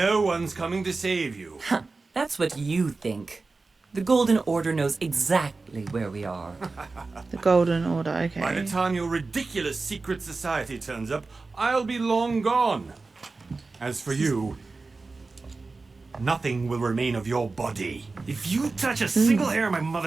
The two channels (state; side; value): quieter; left; 3.8 dB